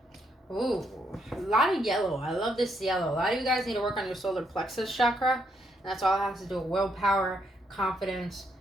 Ooh, a lot of yellow. I love this yellow. A lot of you guys need to work on your solar plexus chakra. And that's all it has to do with willpower, confidence,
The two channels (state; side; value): normal; both; correlation 0.75